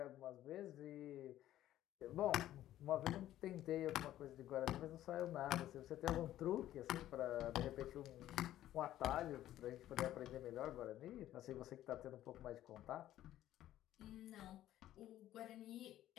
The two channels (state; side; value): quieter; right; 13.2 dB